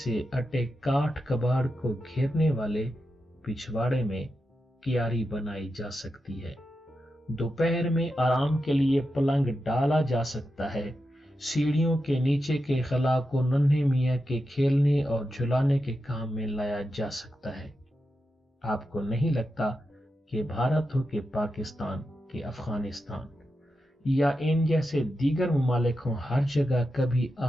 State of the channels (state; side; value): normal; both; correlation 0.89